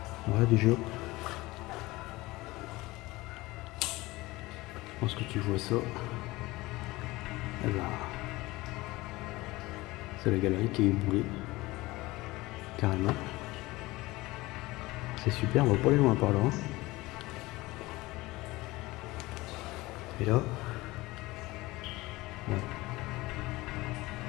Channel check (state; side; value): quieter; right; 20.2 dB